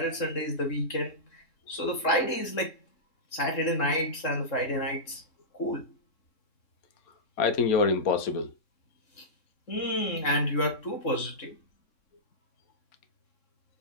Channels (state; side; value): late; right; 3.7 ms